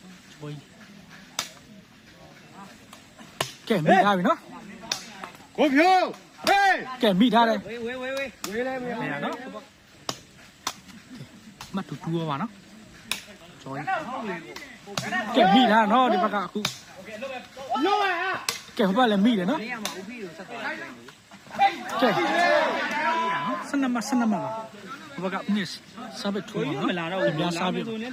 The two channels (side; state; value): both; identical; correlation 1.00